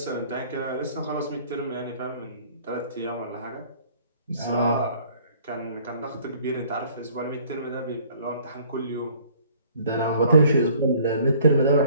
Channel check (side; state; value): both; inverted; correlation -0.56